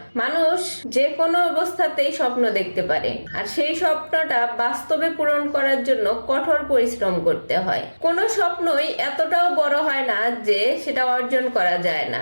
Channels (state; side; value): inverted; both; correlation -1.00